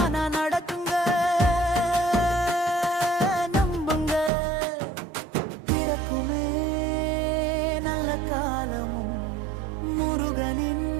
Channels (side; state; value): left; drops out; at 4.3 s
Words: நடக்குங்க. நம்புங்க, பிறக்குமே நல்ல காலமும் முருகனின்